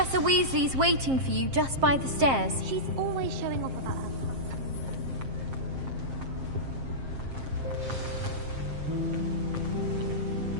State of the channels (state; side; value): late; left; 7.5 ms